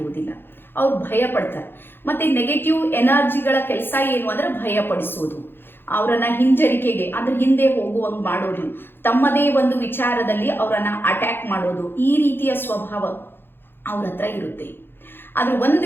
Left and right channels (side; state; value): right; late; 0.10 ms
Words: ಅವ್ರು ಭಯ ಪಡ್ತಾರೆ. ಮತ್ತೆ ನೆಗೆಟಿವ್ ಎನರ್ಜಿಗಳ ಕೆಲಸ ಏನು ಅಂದ್ರೆ ಭಯ ಪಡಿಸೋದು, ಅವರನ್ನ ಹಿಂಜರಿಕೆಗೆ ಅಂದ್ರೆ ಹಿಂದೆ ಹೋಗುವಂಗ್ ಮಾಡೋದು, ತಮ್ಮದೇ ಒಂದು ವಿಚಾರದಲ್ಲಿ ಅವರನ್ನ ಅಟ್ಯಾಕ್ ಮಾಡೋದು, ಈ ರೀತಿಯ ಸ್ವಭಾವ ಅವ್ರ ಹತ್ರ ಇರುತ್ತೆ. ಆದ್ರೆ